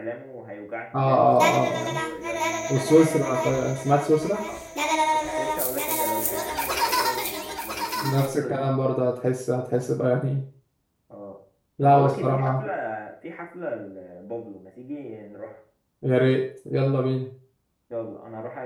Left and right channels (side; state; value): both; identical; correlation 1.00